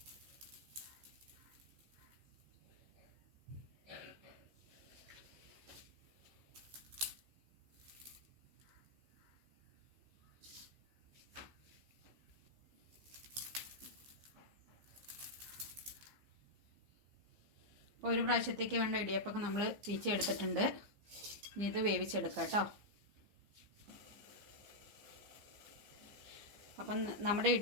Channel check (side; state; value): left; late; 15 ms